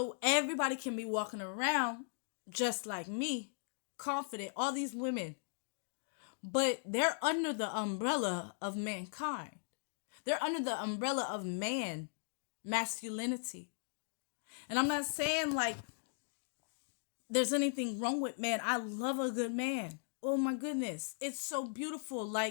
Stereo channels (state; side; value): silent; right; digital silence